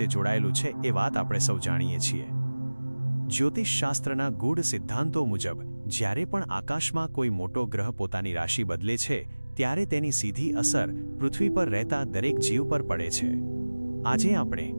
જોડાયેલું છે એ વાત આપણે સૌ જાણીએ છીએ। જ્યોતિષશાસ્ત્રના ગૂઢ સિદ્ધાંતો મુજબ જ્યારે પણ આકાશમાં કોઈ મોટો ગ્રહ પોતાની રાશિ બદલે છે ત્યારે તેની સીધી અસર પૃથ્વી પર રહેતા દરેક જીવ પર પડે છે। આજે આપણે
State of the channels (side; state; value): both; inverted; correlation -1.00